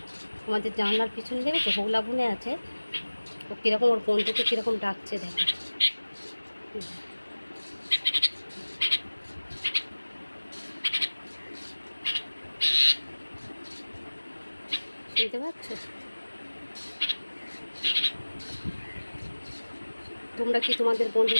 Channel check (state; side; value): inverted; both; correlation -1.00